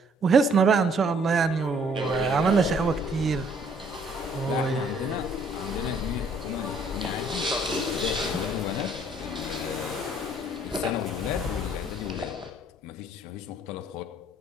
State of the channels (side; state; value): both; normal; correlation 0.62